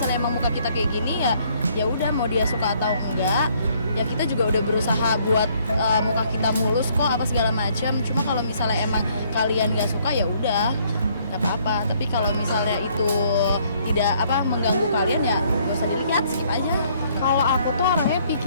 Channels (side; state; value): both; inverted; correlation -0.65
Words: emang muka kita kayak gini ya udah, mau dia suka atau enggak ya kita juga udah berusaha buat muka kita mulus kok, apa segala macam. Cuma kalau misalnya emang kalian nggak suka ya udah nggak apa-apa. Tapi kalau misalnya itu tidak mengganggu kalian ya nggak usah dilihat, skip aja. Kalau aku tuh orangnya